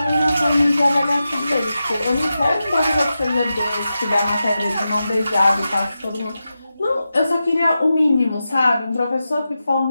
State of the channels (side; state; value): both; inverted; correlation -0.91